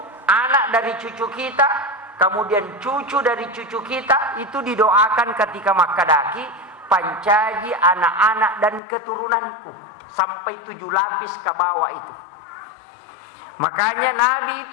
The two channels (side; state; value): right; drops out; at 8.8 s